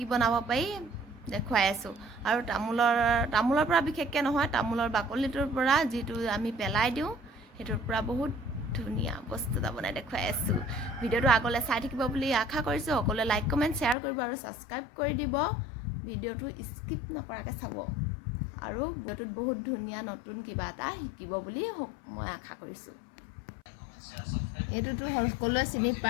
বনাব পাৰি দেখুৱাই আছোঁ। আৰু তামোলৰ পৰা বিশেষকৈ নহয়, তামোলৰ বাকলিটোৰ পৰা যিটো আমি পেলাই দিওঁ সেইটোৰ পৰা বহুত ধুনীয়া বস্তু এটা বনাই দেখুৱাই আছোঁ। ভিডিঅ'টো আগলৈ চাই থাকিব বুলি আশা কৰিছোঁ। সকলোৱে লাইক কমেণ্ট শ্বেয়াৰ কৰিব আৰু ছাবস্ক্ৰাইব কৰি দিব। ভিডিঅ'টো স্কিপ নকৰাকৈ চাব আৰু ভিডিঅ'টোত বহুত ধুনীয়া নতুন কিবা এটা শিকিব বুলি মই আশা কৰিছোঁ। এইটোতো সকলোৱে চিনি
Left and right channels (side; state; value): right; drops out; at 14.0 s